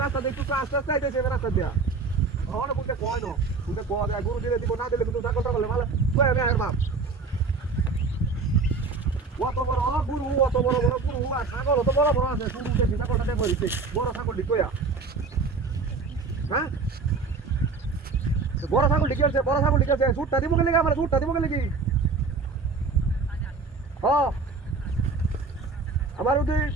রাস্তা দিয়ে একটু আস্তে আস্তে আইতেছি রাস্তা দিয়া। অনেক বলতে কয় না বলতে কয় দেয় গরু দিলে দিব না দিলে কিন্তু ছাগলটা বলে ভালো তুই আমি আর বাপ অত বড় গরু অত বড় বড় গরু আর ছাগল অত বড় বড় আছে শুরু দেখি ছাগলটা দেখো বড় ছাগল কইয়া। হ্যাঁ বড় ছাগল কি আছে বড় ছাগল কি আছে সুটটা দিব গেলে আমার সুটটা দিব গেলে কি হ্যাঁ আমার ওই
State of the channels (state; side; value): quieter; left; 4.3 dB